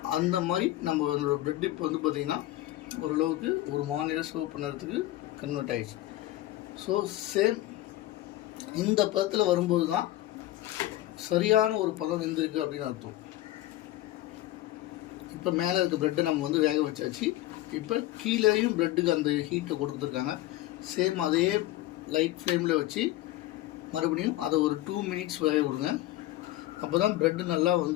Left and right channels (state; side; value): quieter; right; 15.8 dB